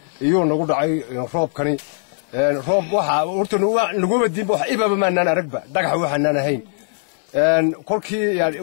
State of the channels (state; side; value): silent; right; digital silence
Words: iyo nagu dhacay roobkani roob waxa horta nagu wadin wax ibaba maanaan aragba dhagax waxaan ahayn kolkii yaani